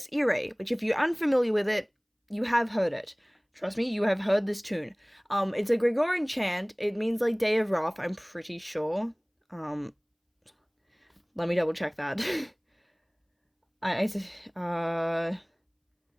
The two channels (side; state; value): both; identical; correlation 1.00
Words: Erie, which if you're unfamiliar with it, you have heard it. Trust me, you have heard this tune. It's a Gregorian chant. It means like Day of Wrath, I'm pretty sure. Let me double check that. uh,